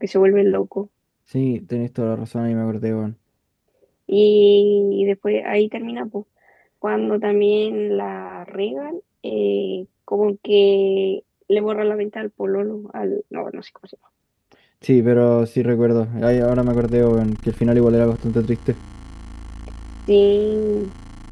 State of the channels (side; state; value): both; identical; correlation 1.00